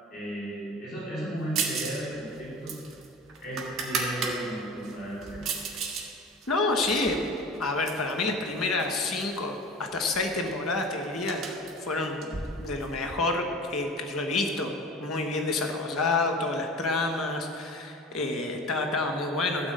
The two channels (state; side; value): normal; both; correlation 0.36